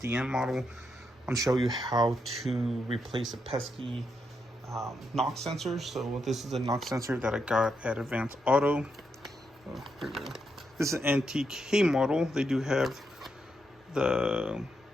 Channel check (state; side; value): normal; both; correlation 0.81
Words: model. I'm going to show you how to replace a pesky knock sensor. So this is a knock sensor that I got at Advanced Auto. Here we go. This is an NTK model. They do have the